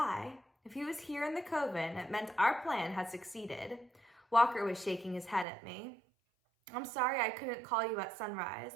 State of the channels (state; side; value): drops out; left; at 5.5 s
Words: If he was here in the coven, it meant our plan had succeeded. Walker was shaking his head at me. I'm sorry I couldn't call you at sunrise.